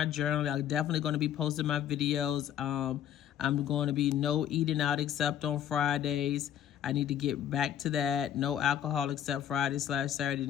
journal. I'm definitely going to be posting my videos. I'm going to be no eating out except on Fridays. I need to get back to that. No alcohol except Friday/Saturday.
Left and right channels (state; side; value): quieter; right; 10.3 dB